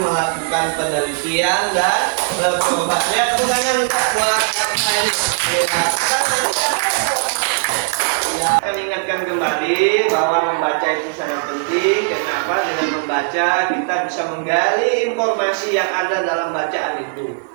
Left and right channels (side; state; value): left; silent; digital silence